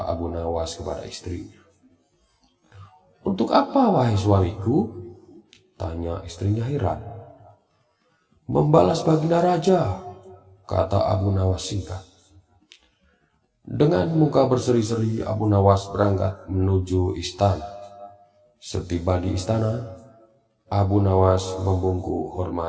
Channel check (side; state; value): both; identical; correlation 1.00